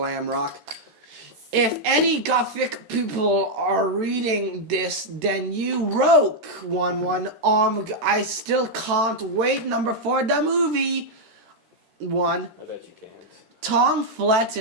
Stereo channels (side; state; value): left; late; 13 ms